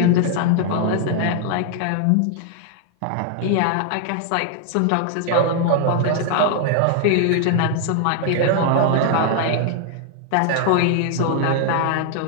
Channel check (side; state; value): both; different; correlation 0.00